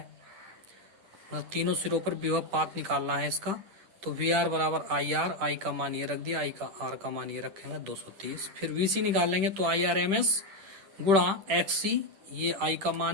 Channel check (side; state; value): left; late; 10 ms